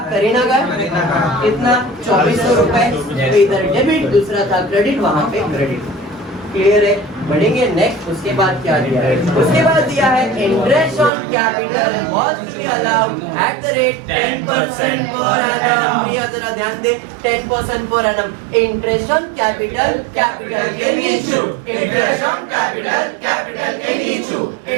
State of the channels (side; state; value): left; drops out; at 11.1 s